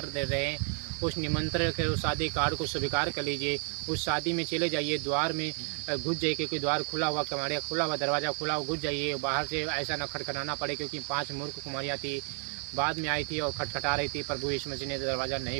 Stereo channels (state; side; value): quieter; left; 38.1 dB